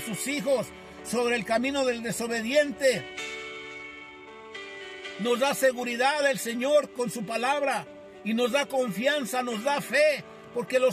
sus hijos, sobre el camino del desobediente. Nos da seguridad el Señor con su palabra y nos da confianza, nos da fe, porque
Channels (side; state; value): both; identical; correlation 1.00